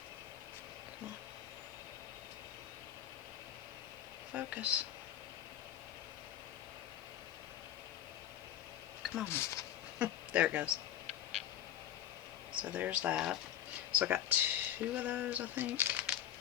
Come on. Focus. Come on. There it goes. So there's that. So I got 2 of those, I think.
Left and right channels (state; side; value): quieter; right; 10.8 dB